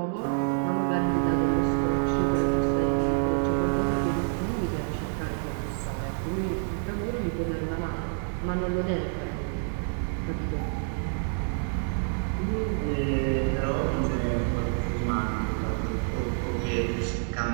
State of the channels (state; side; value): silent; left; 58 dB below the other